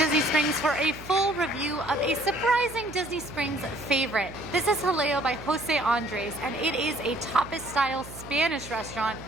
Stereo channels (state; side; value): noise; right; hum, 15 dB below the sound